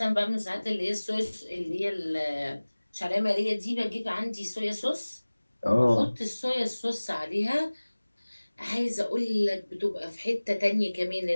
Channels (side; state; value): both; inverted; correlation -1.00